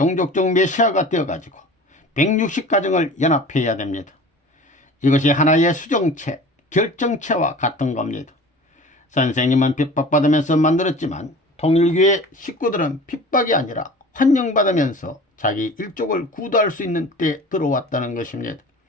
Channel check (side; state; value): both; normal; correlation 0.40